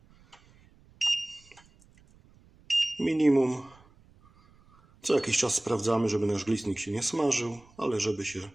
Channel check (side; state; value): right; noise; rumble, 28 dB below the sound